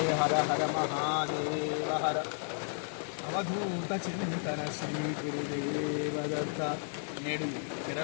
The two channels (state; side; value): silent; right; 56 dB below the other